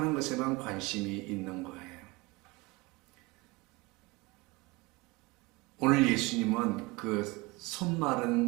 것에만 관심이 있는 거예요. 오늘 예수님은 그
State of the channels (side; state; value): left; quieter; 23.0 dB